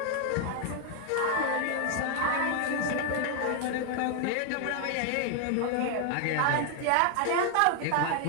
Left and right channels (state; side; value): different; both; correlation 0.00